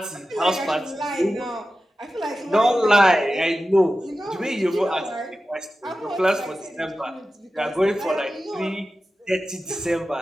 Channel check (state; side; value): normal; both; correlation 0.94